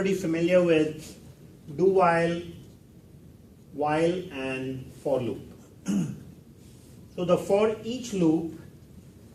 familiar with do while, and for loop. So the for each loop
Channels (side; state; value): both; identical; correlation 1.00